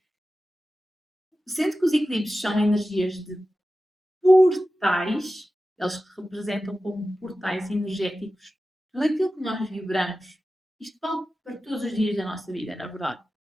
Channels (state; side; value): normal; both; correlation 0.94